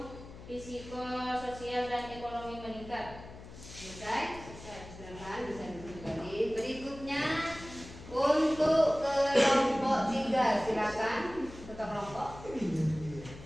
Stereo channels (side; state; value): left; noise; hum, 15 dB below the sound